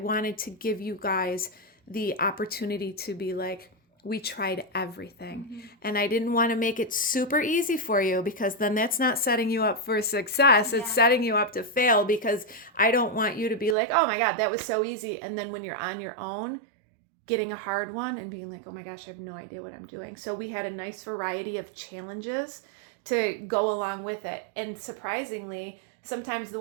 to give you guys the opportunity to be like, we tried everything. And I didn't want to make it super easy for you, because then that's not setting you up for success. It's setting you up to fail, because I don't want you to be like, oh my God, that was so easy. And then when you're on your own, getting a hard one and being like, oh my gosh, I have no idea what I'm doing. So we had a nice variety of challenges to go along with it. And surprisingly, sometimes the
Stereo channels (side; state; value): left; drops out; at 13.8 s